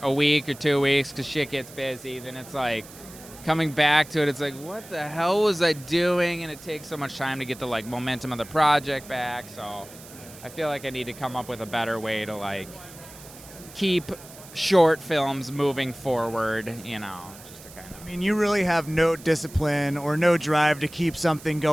a week or 2 weeks because shit gets busy, then it's like coming back to it, it's like, what the hell was I doing? And it takes so much time to get the like momentum of the project back. So I feel like I need to come up with a better way to like keep short films moving forward, just to kind of. I mean, you really have no discipline or no drive to keep something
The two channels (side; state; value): right; noise; hiss, 18 dB below the sound